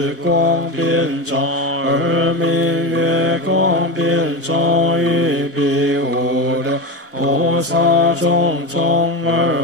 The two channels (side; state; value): both; normal; correlation 0.19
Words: 光遍照，二名月光遍照，于彼无量菩萨种种